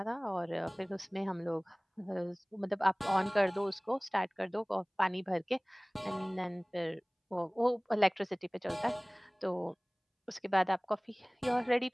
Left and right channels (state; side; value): identical; both; correlation 1.00